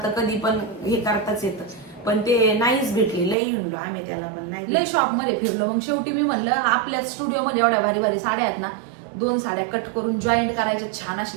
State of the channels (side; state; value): left; drops out; at 3.4 s